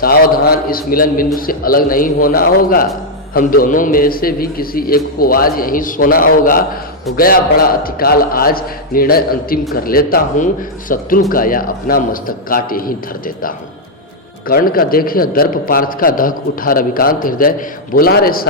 इस मिलन बिंदु से अलग नहीं होना होगा, हम दोनों में से भी किसी एक को आज यहीं सोना होगा। हो गया बड़ा अतिकाल आज, निर्णय अंतिम कर लेता हूँ, शत्रु का या अपना मस्तक काट यहीं धर देता हूँ। कर्ण का देखे दर्प पार्थ का दहक उठा रविकांत हृदय, बोला रे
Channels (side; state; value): both; normal; correlation -0.03